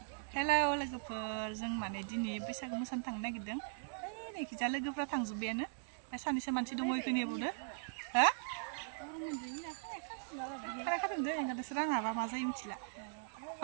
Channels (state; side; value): silent; left; digital silence